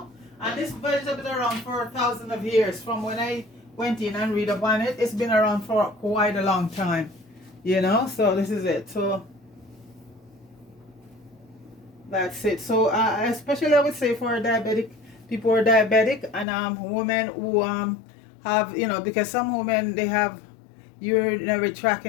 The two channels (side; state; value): right; drops out; at 16.4 s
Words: And this vegetable is around for thousands of years. From when I went in and read up on it, it's been around for quite a long time. You know, so this is it. So that's it. So especially I would say for diabetic people who are diabetic, and women who have, you know, because some women, they have urinary tract